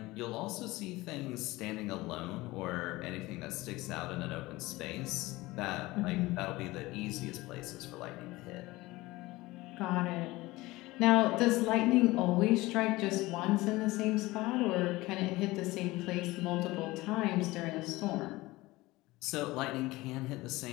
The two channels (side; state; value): right; quieter; 20.0 dB